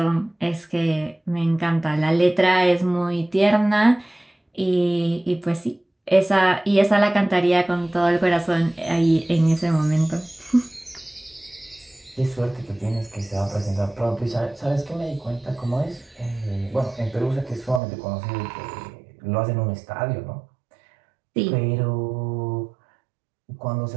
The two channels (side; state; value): left; drops out; at 17.8 s